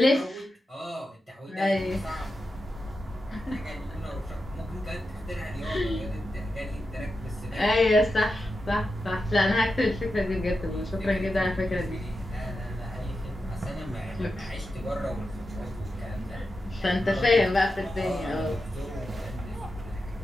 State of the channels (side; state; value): both; normal; correlation 0.90